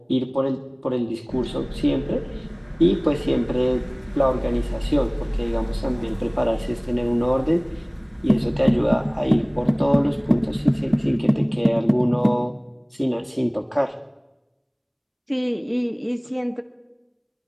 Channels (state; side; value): identical; both; correlation 1.00